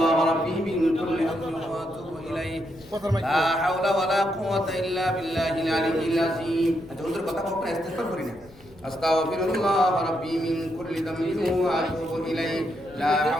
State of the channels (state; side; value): noise; left; rumble, 23 dB below the sound